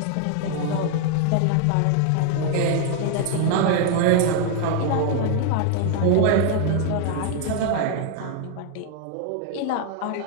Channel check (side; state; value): both; different; correlation 0.00